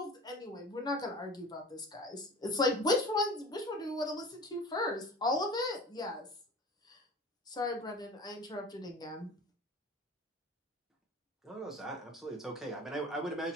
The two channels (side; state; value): both; normal; correlation 0.39